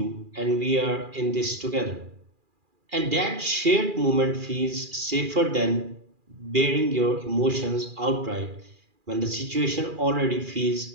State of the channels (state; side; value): late; left; 2.4 ms